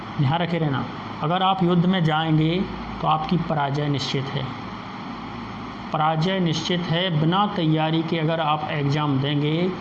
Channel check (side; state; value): both; identical; correlation 1.00